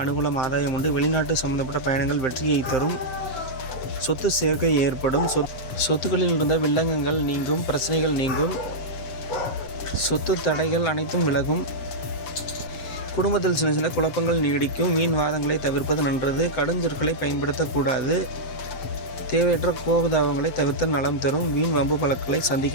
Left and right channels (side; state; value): right; late; 7.0 ms